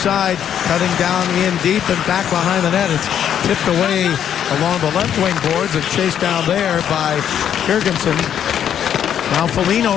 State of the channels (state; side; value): quieter; right; 9.4 dB